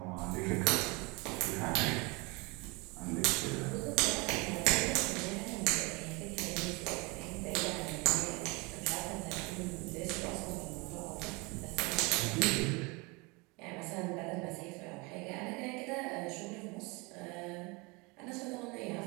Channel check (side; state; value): left; quieter; 27.5 dB